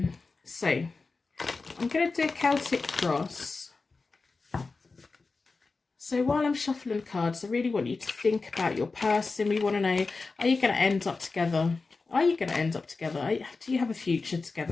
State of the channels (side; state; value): right; quieter; 4.0 dB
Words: So I'm going to do a Celtic cross. So while I'm shuffling cards, I really want you to think about your person. We want to know, are you going to end up together? Are you going to end up together? Do you have a future